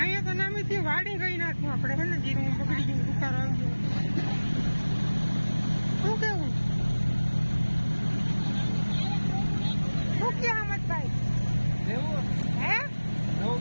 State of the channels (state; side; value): inverted; both; correlation -1.00